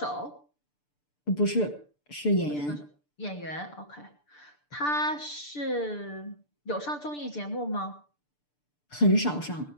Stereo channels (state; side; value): late; right; 6.8 ms